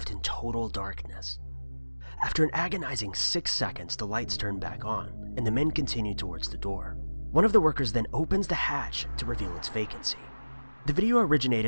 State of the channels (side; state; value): both; inverted; correlation -1.00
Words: in total darkness. After an agonizing 6 seconds, the lights turn back on, and the men continue towards the door. One of the workers then opens the hatch to reveal its vacancy. The video